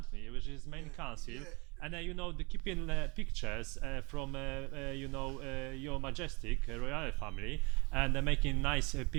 me, which is main council, yeah. and the keeping pictures from your majestic royal family, and making nice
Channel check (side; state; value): left; quieter; 28.7 dB